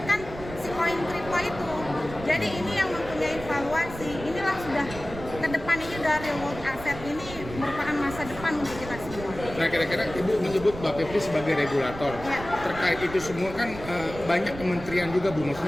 si koin kripto itu. Jadi ini yang mempunyai valuasi, inilah sudah ke depan ini dari real world asset ini merupakan masa depan untuk kita semua. Nah, kira-kira Ibu menyebut Mbak Pepti sebagai regulator. Ya. Terkait itu semua kan banyak kementerian juga Bu,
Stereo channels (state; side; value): noise; right; rumble, 12 dB below the sound